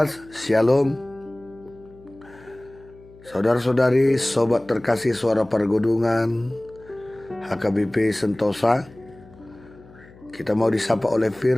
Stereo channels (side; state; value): left; noise; hum, 23 dB below the sound